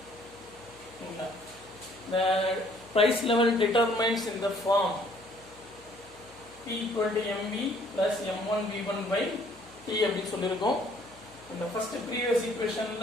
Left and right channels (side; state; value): left; noise; hum, 27 dB below the sound